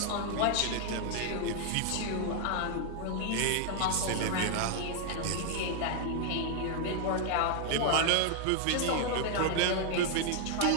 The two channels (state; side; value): different; both; correlation 0.00